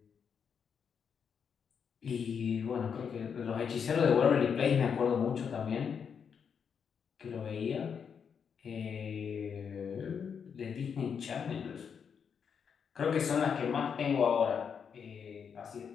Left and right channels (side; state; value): right; quieter; 6.9 dB